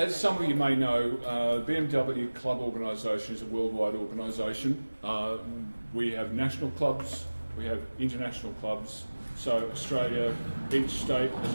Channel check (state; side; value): inverted; both; correlation -1.00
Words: some of you may know, BMW Club organisation is a worldwide organisation. We have national clubs, we have international clubs. So Australia, each state has